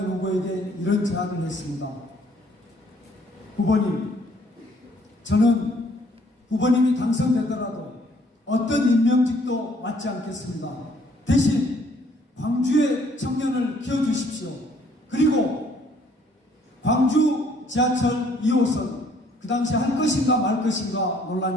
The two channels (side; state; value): both; normal; correlation 0.63